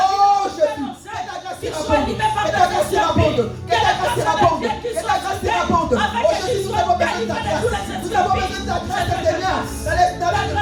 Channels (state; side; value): identical; both; correlation 1.00